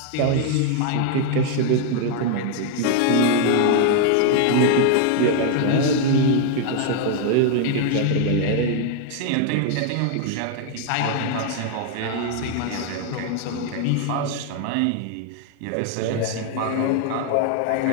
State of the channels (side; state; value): both; different; correlation 0.00